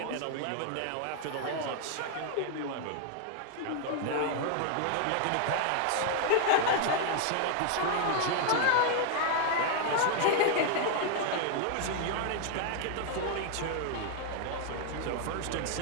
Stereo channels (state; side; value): different; both; correlation 0.00